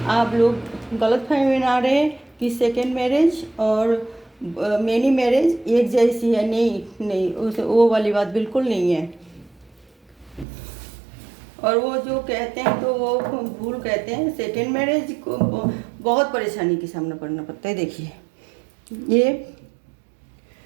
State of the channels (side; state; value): left; drops out; at 10.5 s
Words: आप लोग गलतफहमी में ना रहे कि सेकेंड मैरिज और मैनी मैरिज एक जैसी है। नहीं, उस वो वाली बात बिल्कुल नहीं है। और वो जो कहते हैं तो वो भूल कहते हैं। सेकेंड मैरिज को बहुत परेशानी का सामना करना पड़ता है। देखिए ये